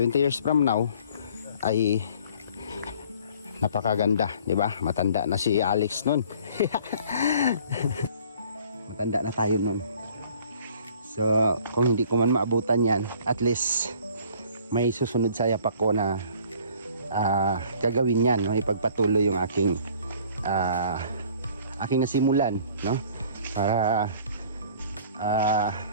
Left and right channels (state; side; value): inverted; both; correlation -0.53